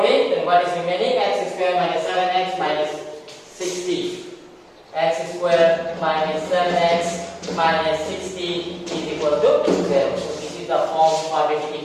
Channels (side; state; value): both; identical; correlation 1.00